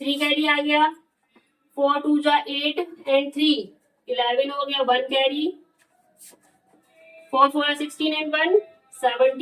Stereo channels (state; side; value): identical; both; correlation 1.00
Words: 3 कैरी आ गया, 4 2 जा 8 एंड 3 11 हो गया, 1 कैरी, 4 4 16 एंड 1